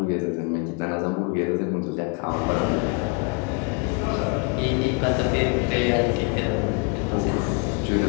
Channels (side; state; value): right; quieter; 32.5 dB